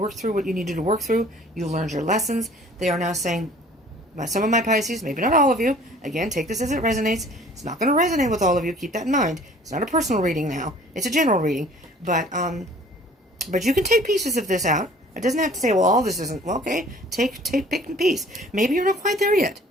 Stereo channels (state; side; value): normal; both; correlation 0.52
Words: through what you needed to work through. You learned your lessons. They are now saying, some of my Pisces, maybe not all of you, again, take this as it resonates. It's not going to resonate with all of you. Keep that in mind. It's not a personal reading now. It's a general reading. But you can take pieces of this out. It doesn't have to say, well, all this isn't. Well, okay, pick a piece. Maybe you're not quite there yet.